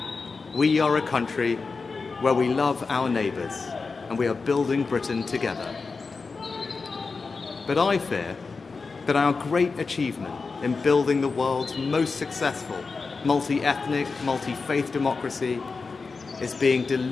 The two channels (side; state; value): right; quieter; 4.4 dB